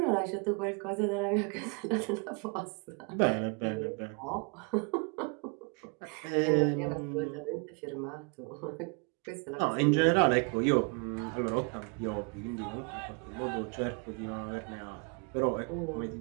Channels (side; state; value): left; quieter; 34.7 dB